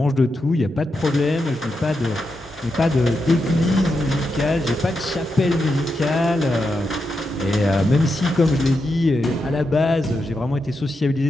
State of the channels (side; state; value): both; normal; correlation 0.86